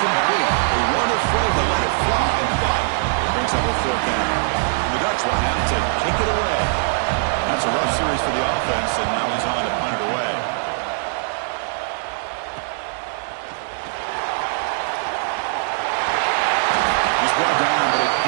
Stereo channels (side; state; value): left; silent; digital silence